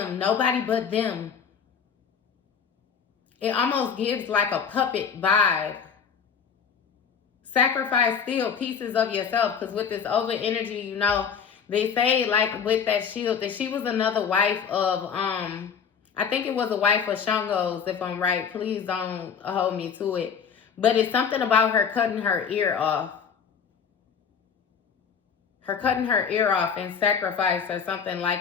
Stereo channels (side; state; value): right; quieter; 6.8 dB